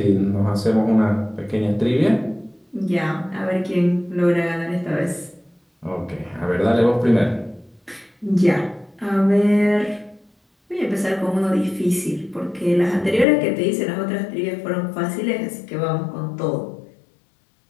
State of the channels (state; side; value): drops out; right; at 13.2 s